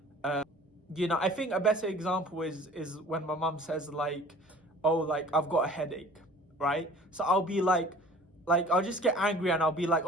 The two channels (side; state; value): both; normal; correlation 0.47